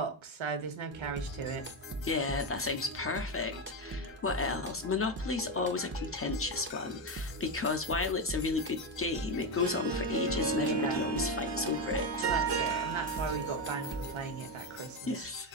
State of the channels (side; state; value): both; normal; correlation 0.11